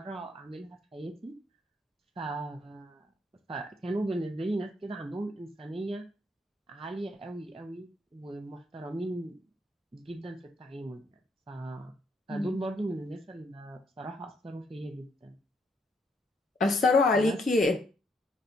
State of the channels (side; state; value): both; normal; correlation 0.72